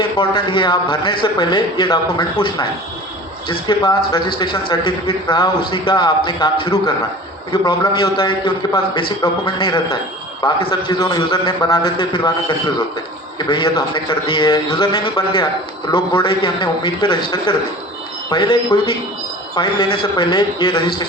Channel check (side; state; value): both; normal; correlation 0.40